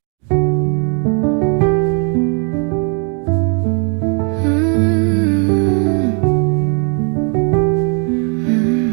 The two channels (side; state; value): left; quieter; 39.0 dB